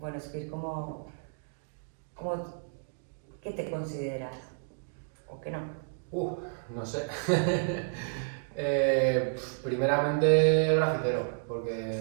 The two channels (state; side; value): silent; left; digital silence